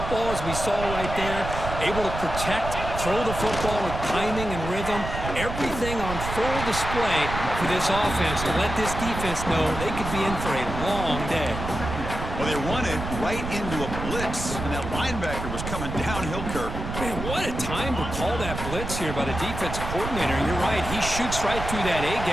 as we saw right there, able to protect, throw the football with timing and rhythm. Everything on full display for this offense to let this defense know they could be in for a long day. Well, they run it right into a blitz, and that linebacker was coming downhill, Kirk. Man, what a time to call that blitz here by the defensive coordinator. You're right, he shoots right through that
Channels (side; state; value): right; noise; rumble, 6 dB below the sound